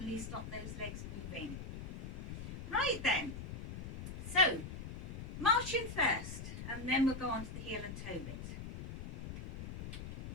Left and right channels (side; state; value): left; noise; rumble, 7 dB below the sound